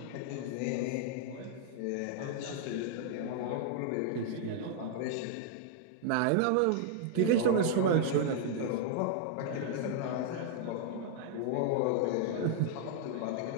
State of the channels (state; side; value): different; both; correlation -0.01